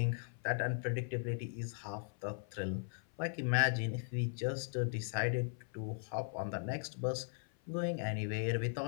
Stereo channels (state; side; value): silent; right; 52 dB below the other